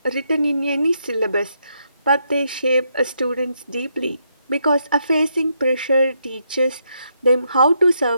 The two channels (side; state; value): both; inverted; correlation -0.78